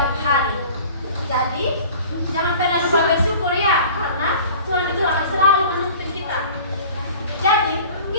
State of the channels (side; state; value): both; inverted; correlation -0.44